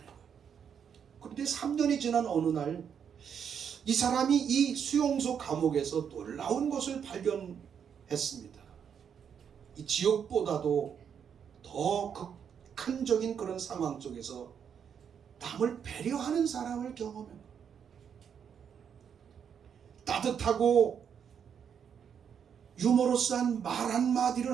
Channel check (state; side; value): quieter; left; 7.7 dB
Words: 거예요. 그런데 3년이 지난 어느 날 이 사람이 이 수용소 감옥에서 놀라운 것을 발견했습니다. 이 지옥보다도 더 극한적인 그런 상황 속에서 남을 배려하는 사람을 경험합니다. 따뜻하고 유머러스한 말